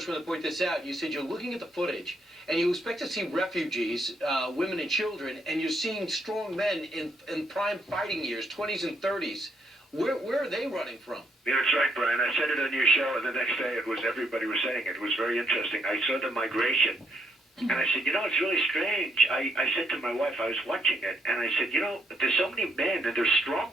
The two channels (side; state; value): both; normal; correlation 0.73